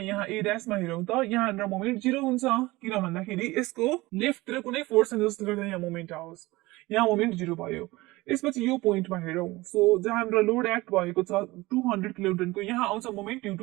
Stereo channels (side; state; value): left; quieter; 20.5 dB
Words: ए ड्यासमा हेरौँ त यहाँ हाम्रो मोमेन्ट 0 हुन्छ किन भन्दाखेरि यसको लेफ्टतिर कुनै फोर्स छैन जसले गर्दा यहाँ मोमेन्ट आओस् यहाँ मोमेन्ट 0 भयो यसपछि यो पोइन्टमा हेरौँ सो जहाँ हाम्रो लोड एक्ट भएको छ 200 किलोन्युटनको यहाँ आउँछ moment due